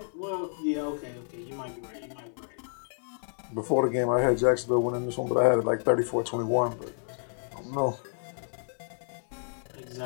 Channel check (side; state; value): right; silent; 58 dB below the other